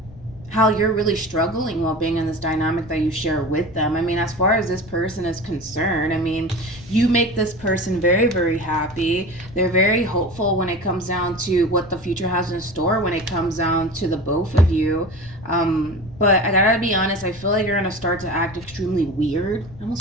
how you're really struggling while being in this dynamic that you share with them. I mean, as far as this person is concerned, I mean, you make this person very, very happy. They're very hopeful when it comes down to what the future has in store, when it comes down to the both of you. But I gotta be honest, I feel like you're gonna start to act extremely weird. I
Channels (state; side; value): noise; left; rumble, 19 dB below the sound